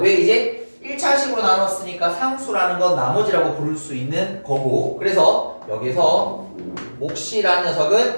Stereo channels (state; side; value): inverted; both; correlation -1.00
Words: 이제 1차식으로 나눴으니까 상수라는 건 나머지라고 부를 수 있는 거고 그래서 여기서 몫이라는